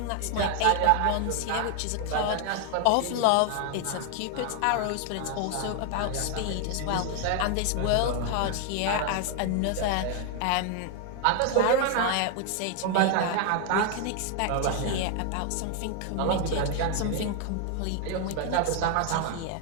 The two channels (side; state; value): both; different; correlation 0.00